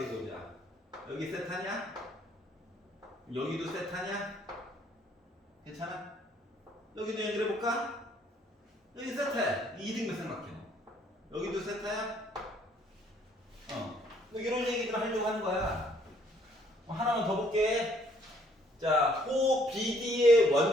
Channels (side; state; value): both; normal; correlation 0.64